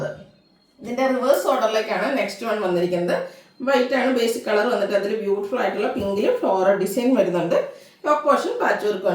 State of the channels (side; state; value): both; identical; correlation 1.00